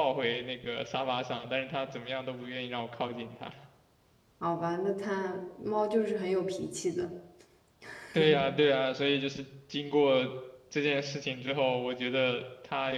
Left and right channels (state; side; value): identical; both; correlation 1.00